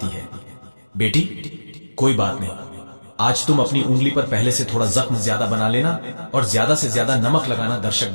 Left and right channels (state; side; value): inverted; both; correlation -1.00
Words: है, बेटी, कोई बात नहीं, आज तुम अपनी उंगली पर पहले से थोड़ा जख्म ज्यादा बना लेना और ज्यादा से ज्यादा नमक लगाना, दर्शक